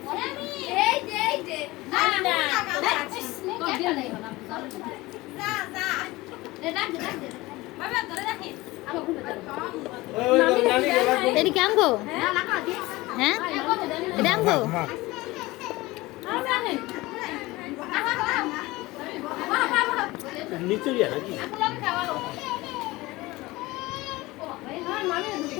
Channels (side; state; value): right; quieter; 20.3 dB